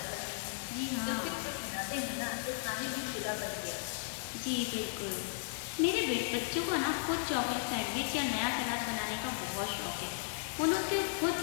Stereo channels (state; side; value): silent; right; digital silence